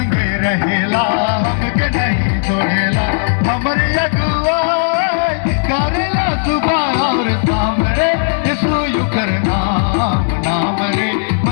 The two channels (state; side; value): silent; right; digital silence